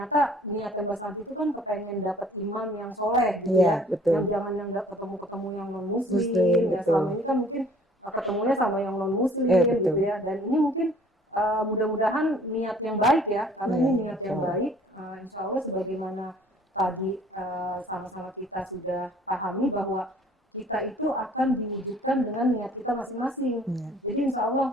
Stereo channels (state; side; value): normal; both; correlation 0.55